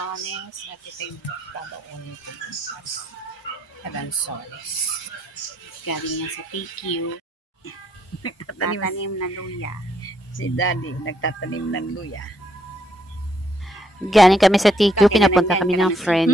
at ito yung babaunin ko na lansones. Galing yan sa TQ. Nagtatanim ng luya. Si Daddy nagtatanim ng luya. Galing kami sa TQ, pinapunta kami ng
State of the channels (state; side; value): normal; both; correlation 0.72